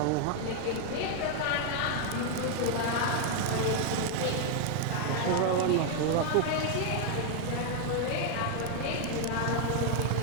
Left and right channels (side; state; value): both; different; correlation 0.00